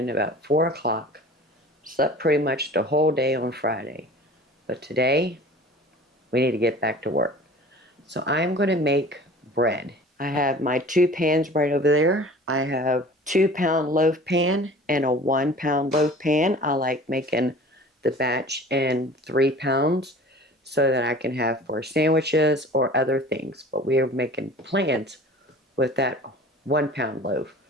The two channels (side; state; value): both; normal; correlation 0.43